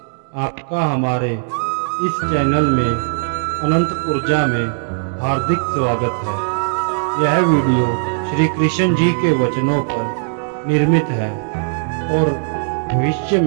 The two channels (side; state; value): left; silent; digital silence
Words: आपका हमारे इस चैनल में अनंत ऊर्जा में हार्दिक स्वागत है। यह वीडियो श्री कृष्ण जी के वचनों पर निर्मित है और भविष्य